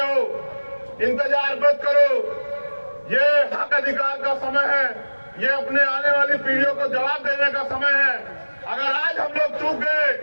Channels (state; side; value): inverted; both; correlation -1.00